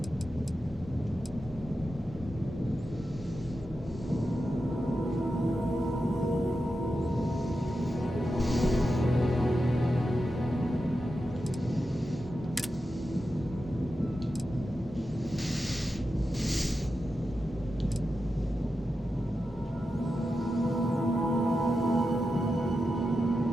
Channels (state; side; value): normal; both; correlation 0.90